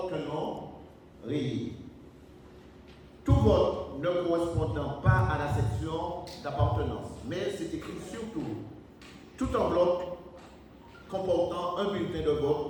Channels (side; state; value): both; identical; correlation 1.00